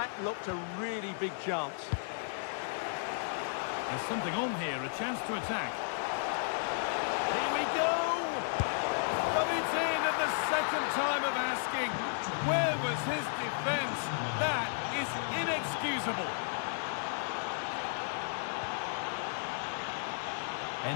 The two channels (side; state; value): right; silent; digital silence